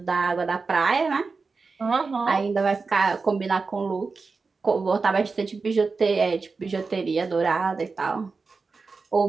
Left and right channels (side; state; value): left; quieter; 4.4 dB